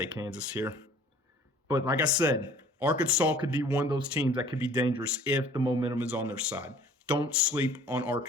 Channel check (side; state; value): both; normal; correlation 0.52